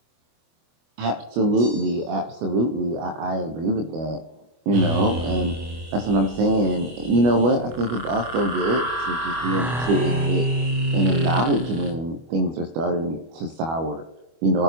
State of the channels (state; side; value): late; left; 25 ms